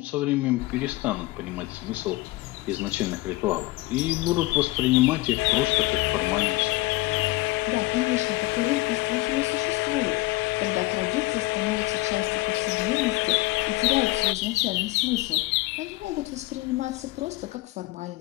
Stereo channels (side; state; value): right; quieter; 20.3 dB